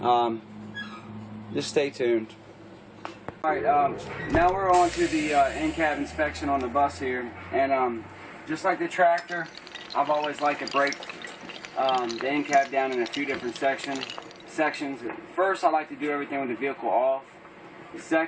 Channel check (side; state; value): both; identical; correlation 1.00